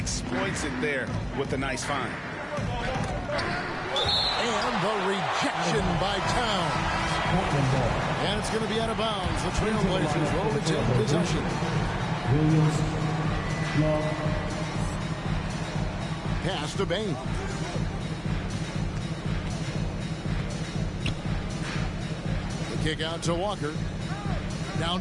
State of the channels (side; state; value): both; identical; correlation 1.00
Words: it there with a nice find. And the rejection by Towns. And it's going to be out of bounds. The Trailblazers will retain possession. Pass to Bain. The kick out to Walker. Down